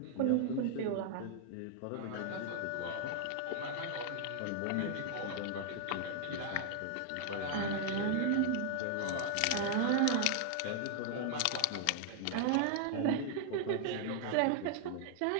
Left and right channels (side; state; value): both; different; correlation -0.01